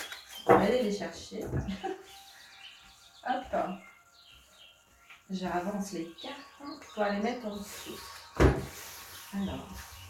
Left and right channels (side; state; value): both; identical; correlation 1.00